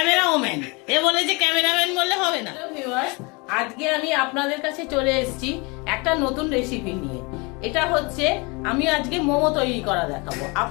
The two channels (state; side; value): quieter; right; 28.4 dB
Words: এ বলেছে ক্যামেরাম্যান বললে হবে না। আজকে আমি আপনাদের কাছে চলে এসেছি একটা নতুন রেসিপি নিয়ে। এটা হচ্ছে আমি আজকে মোমো তৈরি করা দেখাবো।